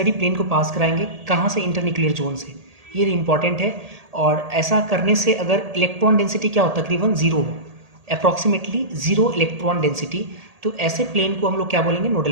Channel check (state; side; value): late; left; 1.8 ms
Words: प्लेन को पास कराएंगे, कहाँ से, इंटरन्यूक्लियर जोन से, ये इंपॉर्टेंट है। और ऐसा करने से अगर इलेक्ट्रॉन डेंसिटी क्या हो, तकरीबन जीरो हो, अप्रॉक्सीमेटली जीरो इलेक्ट्रॉन डेंसिटी, तो ऐसे प्लेन को हम लोग क्या बोलेंगे, नोडल